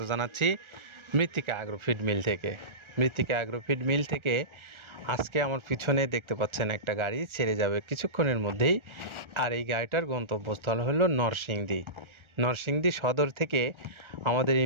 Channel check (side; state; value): left; late; 1.4 ms